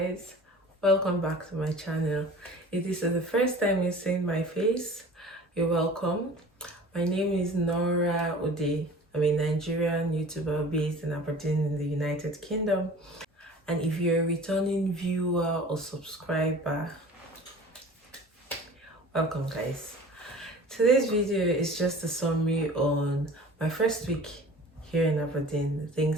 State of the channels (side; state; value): both; normal; correlation 0.43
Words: welcome back to my channel. If this is the first time you're seeing my face, you're welcome. My name is Nora Ode. I'm a Nigerian YouTuber based in Aberdeen in the United Kingdom. And if you're a returning viewer or subscriber, welcome guys. Today's video is just a summary on my first week here in Aberdeen, the